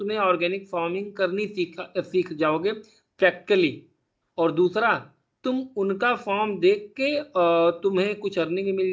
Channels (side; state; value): both; identical; correlation 1.00